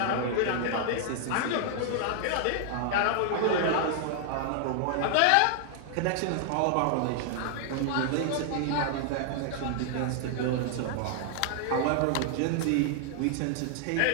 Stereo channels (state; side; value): different; both; correlation 0.00